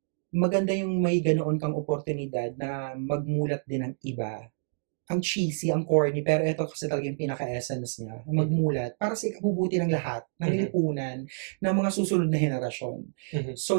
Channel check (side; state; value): left; silent; digital silence